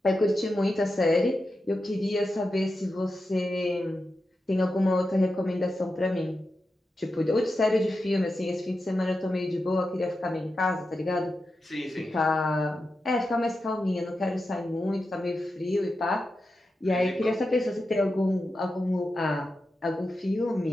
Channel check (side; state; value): both; normal; correlation 0.90